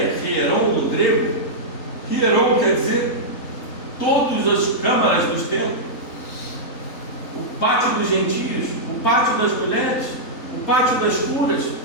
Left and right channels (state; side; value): late; right; 3.8 ms